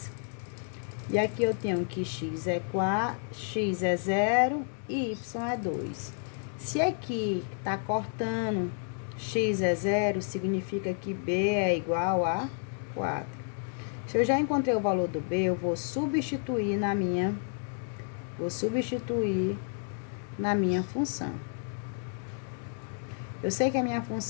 E aqui eu tenho que x é 4, x é 0 e y é 2. Se aqui tá cortando, x é 0, significa que b é igual a 4. Se eu já encontrei o valor do b, eu vou substituir na minha função. Eu sei que a minha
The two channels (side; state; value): right; silent; 57 dB below the other